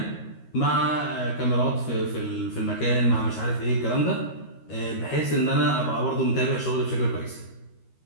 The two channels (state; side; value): late; right; 13 ms